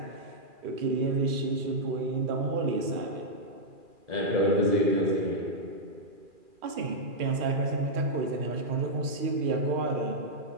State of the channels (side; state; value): left; late; 2.4 ms